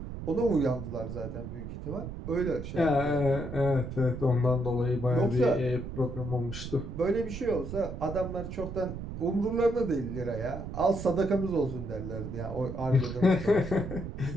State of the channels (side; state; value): right; noise; rumble, 8 dB below the sound